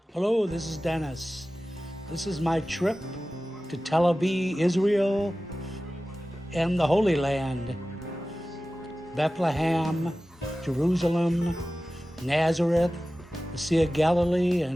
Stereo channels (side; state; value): both; normal; correlation 0.96